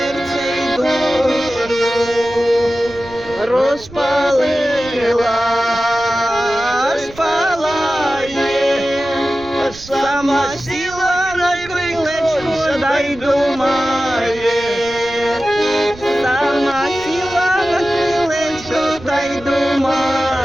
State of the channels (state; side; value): noise; right; rumble, 19 dB below the sound